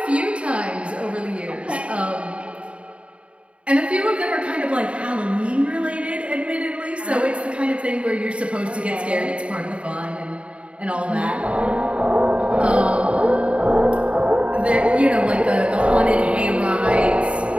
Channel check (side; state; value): left; late; 0.060 ms